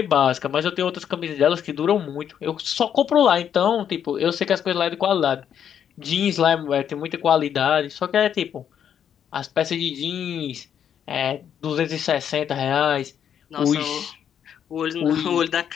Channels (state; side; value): quieter; right; 8.8 dB